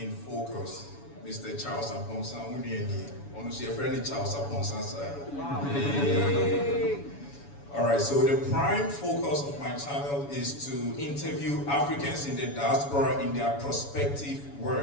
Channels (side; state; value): right; late; 7.1 ms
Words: focus. Mr. Charles Aponsa, honestly, a friendly Charles Aponsa. Alright, so the prime focus of my channel is to interview Africans in the diaspora in their prospective